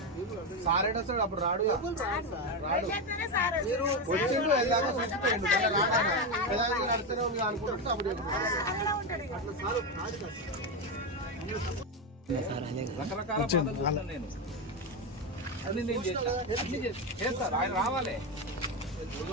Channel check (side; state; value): both; normal; correlation 0.11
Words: సారేట సార్ అప్పుడు రాడు మీరు వచ్చిండు వెళ్ళాక చచ్చిపోయిండు నడుస్తూనే ఉంది అనుకుంటే అప్పుడు అట్లా సార్ కాదు రకరకాల నేను అన్ని నేను చేస్తాను. ఆయన రావాలి